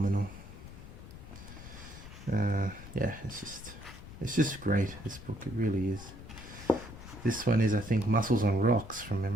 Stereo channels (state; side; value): noise; left; rumble, 14 dB below the sound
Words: Yeah, it's just great, this book. It really is. This one is, I think, Muscles on Rocks from